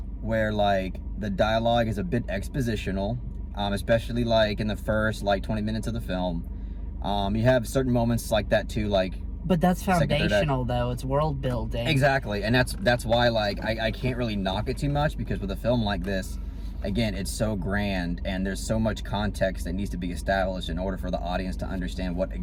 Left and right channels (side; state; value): both; identical; correlation 1.00